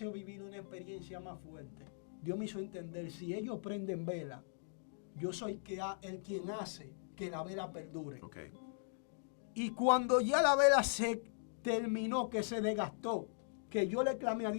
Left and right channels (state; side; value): silent; right; digital silence